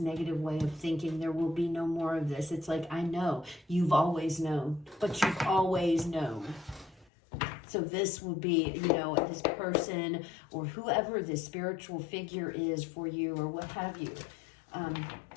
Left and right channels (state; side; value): drops out; right; at 7.1 s